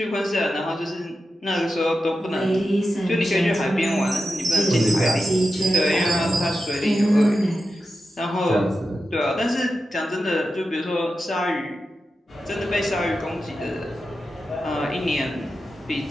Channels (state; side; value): normal; both; correlation 0.91